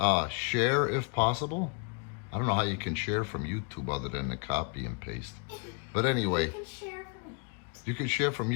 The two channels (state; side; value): quieter; right; 34.3 dB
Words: Share if possible. I don't know how you can share from YouTube other than the copy and paste. But anyway, you can share from